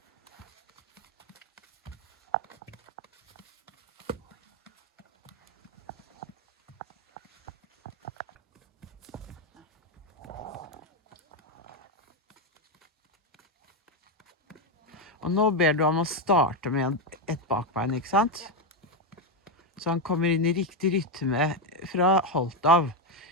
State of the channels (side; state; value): both; normal; correlation 0.07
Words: Og nå ber du ham å starte med et bakbein, ikke sant? Så han kommer inn i riktig rytme fra holdt av.